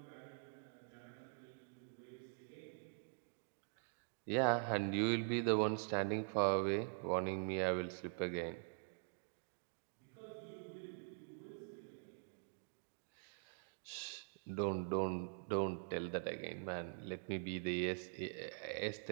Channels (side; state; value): left; silent; digital silence